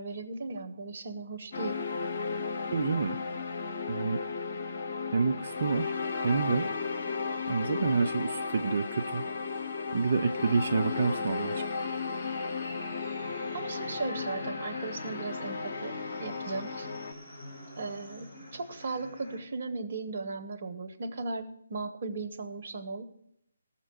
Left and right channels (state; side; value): inverted; both; correlation -0.78